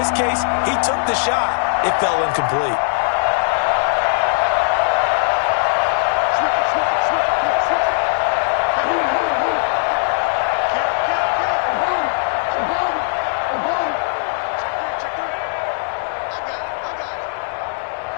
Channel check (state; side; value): silent; right; 66 dB below the other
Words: case, he took the shot. It fell incomplete.